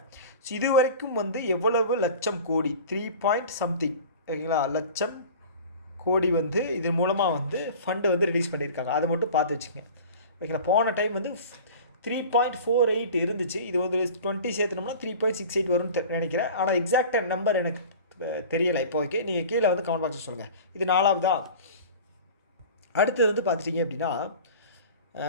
ஸோ இது வரைக்கும் வந்து எவ்வளவு லட்சம் கோடி, 3 ஓகேங்களா, லட்சம் கோடி வந்து இதன் மூலமாக வந்து ஃபண்டு வந்து ரிலீஸ் பண்ணியிருக்காங்க. அதை மட்டும் பார்த்து வச்சுங்க. ஓகேங்களா? போன டைம் வந்து 3.48 இருந்துச்சு. இது வந்து 20 சேர்த்துனோம்னா 3.68 வரும்னு நினைக்கிறேன். ஆனால் எக்ஸாக்டாக நம்பர் எனக்கு தெரியலை இப்போதைக்கு. நீங்கள் கீழே வந்து கமெண்ட் பாக்ஸில் சொல்லுங்கள். இது 4வதா. அடுத்தது வந்து பார்த்துட்டிங்க அப்படின்னா,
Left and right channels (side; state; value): both; inverted; correlation -0.39